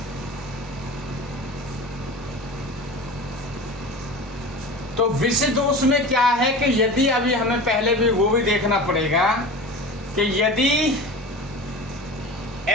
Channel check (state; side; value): normal; both; correlation 0.33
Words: तो विष दोष में क्या है कि यदि अभी हमें पहले भी वो भी देखना पड़ेगा कि यदि